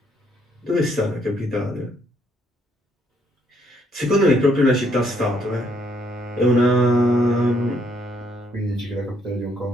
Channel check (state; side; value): normal; both; correlation 0.70